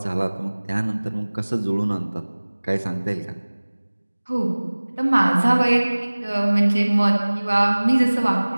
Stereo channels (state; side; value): inverted; both; correlation -1.00